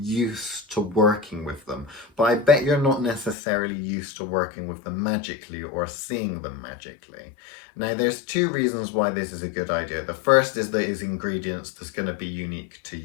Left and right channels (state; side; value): drops out; right; at 3.4 s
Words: to working with them, but I bet you're not necessarily used to working with them magically or seeing them magically. Now there's two reasons why this is a good idea. The first is that it's ingredients that's going to be unique to